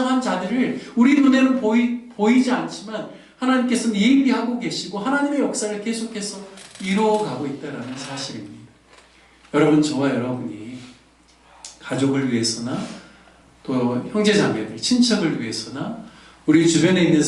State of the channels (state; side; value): identical; both; correlation 1.00